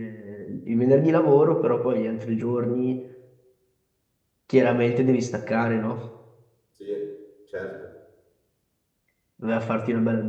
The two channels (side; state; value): both; identical; correlation 1.00